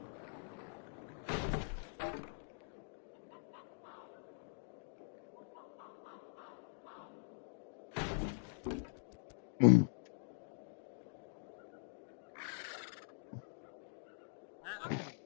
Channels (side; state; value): right; silent; digital silence